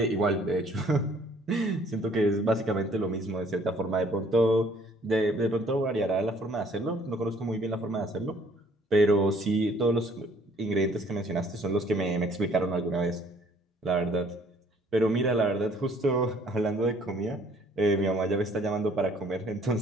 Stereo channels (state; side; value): normal; both; correlation 0.60